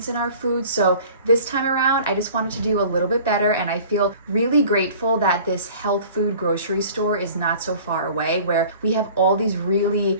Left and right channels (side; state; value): both; inverted; correlation -0.47